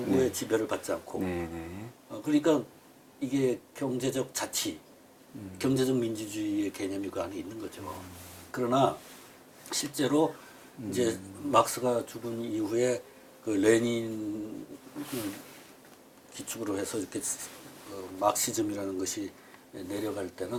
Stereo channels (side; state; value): both; identical; correlation 1.00